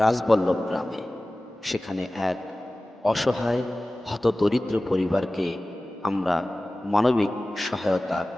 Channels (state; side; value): normal; both; correlation 0.97